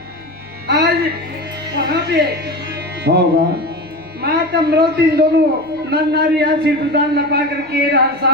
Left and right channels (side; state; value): left; noise; rumble, 30 dB below the sound